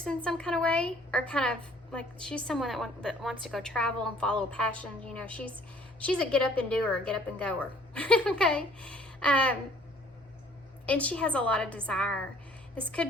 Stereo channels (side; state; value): both; normal; correlation 0.57